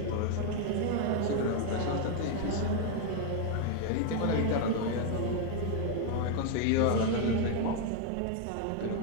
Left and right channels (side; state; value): both; different; correlation 0.00